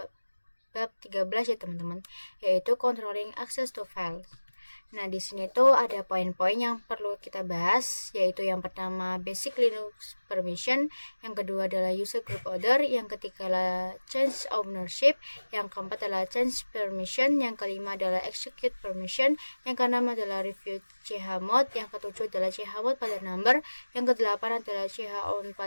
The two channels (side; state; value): both; inverted; correlation -1.00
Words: bab 13 ya teman-teman, yaitu controlling access to files. Nah, di sini tuh ada poin-poin yang perlu kita bahas, yaitu yang pertama basic Linux permission, yang kedua adalah user group order, yang ketiga adalah change ownership, yang keempat adalah change permission, yang kelima adalah execute permission, yang keenam adalah review chmod, yang ketujuh adalah chmod pada number, yang kedelapan adalah chown